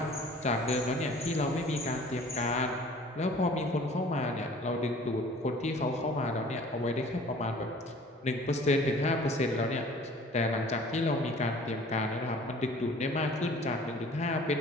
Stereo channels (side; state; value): both; normal; correlation 0.49